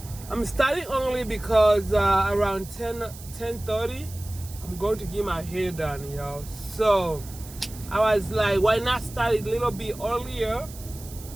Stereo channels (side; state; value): right; noise; hiss, 17 dB below the sound